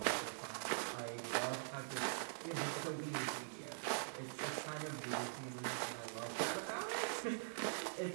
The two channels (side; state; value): left; silent; digital silence